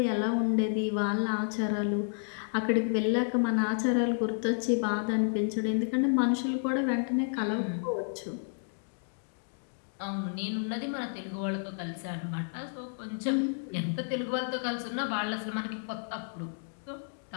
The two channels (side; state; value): right; silent; digital silence